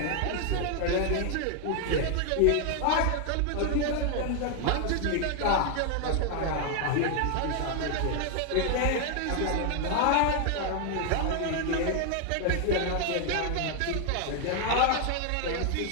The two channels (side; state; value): both; different; correlation 0.00